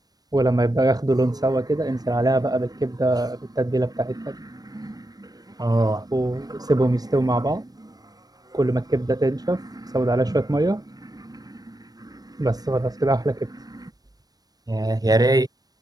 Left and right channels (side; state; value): left; late; 0.19 ms